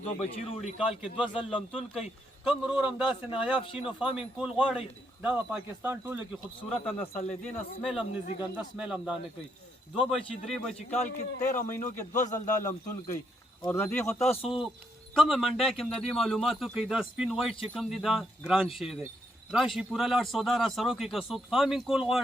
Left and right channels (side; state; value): both; normal; correlation 0.76